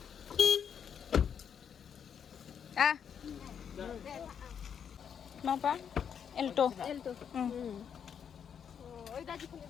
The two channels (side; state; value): right; quieter; 7.8 dB